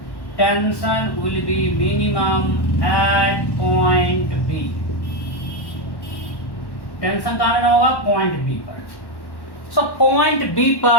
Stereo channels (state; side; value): late; right; 1.1 ms